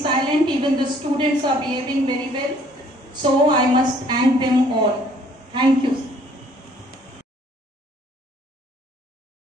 Even the students are behaving very well. So I must thank them all. Thank you.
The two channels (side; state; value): both; normal; correlation 0.60